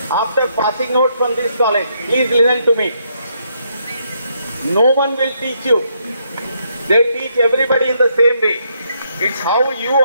after passing out from this college. Please listen to me. No one will teach you. They teach everybody in the same way. It's how you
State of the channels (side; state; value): both; inverted; correlation -0.75